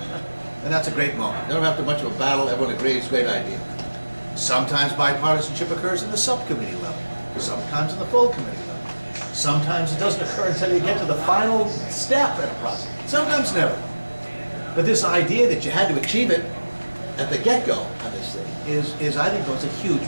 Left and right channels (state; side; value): inverted; both; correlation -1.00